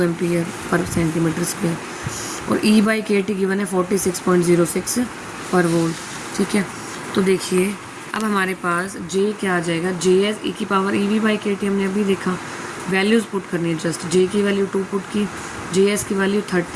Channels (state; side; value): identical; both; correlation 1.00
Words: एम्पियर पर सेंटीमीटर स्क्वायर और E/KT गिवन है 46.06 पर वोल्ट, ठीक है। तो देखिए अब हमारे पास J क्या आ जाएगा, JS e की पावर EV/KT हमने अभी देखा, वैल्यूज़ पुट करनी है जस्ट। J की वैल्यू 2 पुट की, JS की value